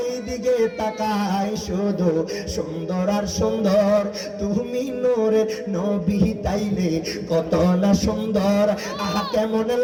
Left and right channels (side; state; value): both; identical; correlation 1.00